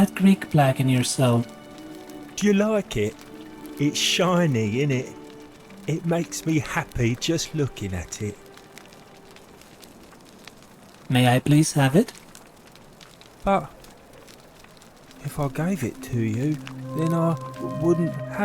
Greek plaque in your cell. Do you like it? It's shiny, innit? It makes me happy just looking at it. May I please have it? But if I gave it to you, then I wouldn't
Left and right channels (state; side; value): identical; both; correlation 1.00